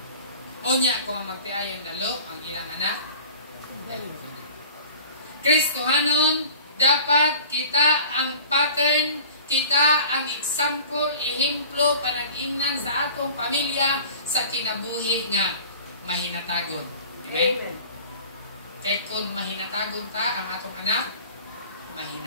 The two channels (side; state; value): both; inverted; correlation -0.44